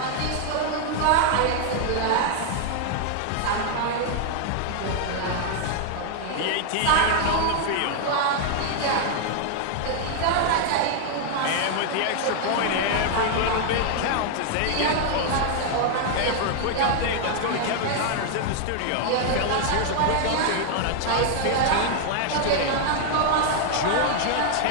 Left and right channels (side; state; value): both; different; correlation 0.00